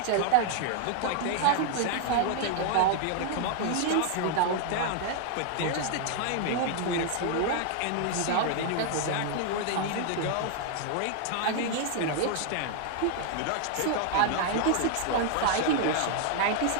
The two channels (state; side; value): different; both; correlation 0.00